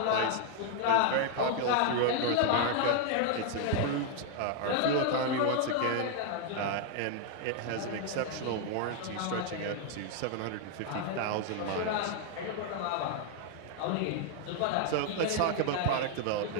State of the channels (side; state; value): both; different; correlation 0.00